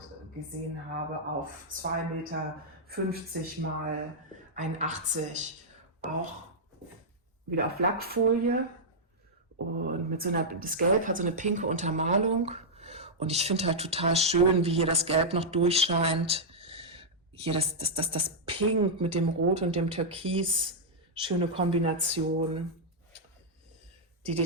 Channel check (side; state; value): both; normal; correlation -0.07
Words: gesehen habe, auf 2,50 Meter mal 1,80 Meter, auch wieder auf Lackfolie Und das Gelb hat so eine pinke Untermalung. Und ich finde halt total schön, wie hier das Gelb noch durchscheint. Hier das Pink mit dem Rot und dem Türkis. Schöne Kombination. Die